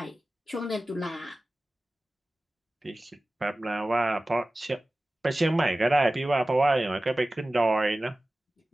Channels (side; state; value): both; normal; correlation 0.96